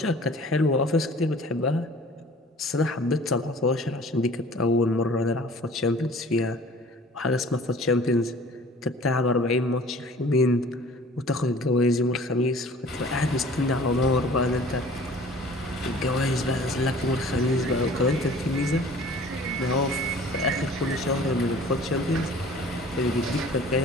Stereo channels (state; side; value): normal; both; correlation 0.48